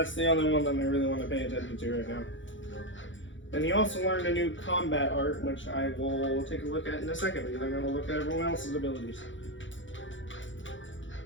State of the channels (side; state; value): right; late; 0.55 ms